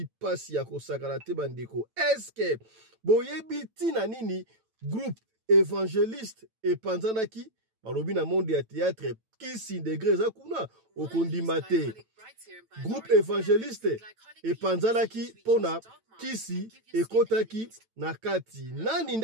pasi ya kosakana te bandeko eske boyebi tina nini groupe évangéliste epanzanaki balobi na monde ya théâtre kisi degré za kuna okondima te groupe évangéliste epanzanaki pona kisi ekotaki na kati nani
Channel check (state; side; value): late; left; 9.0 ms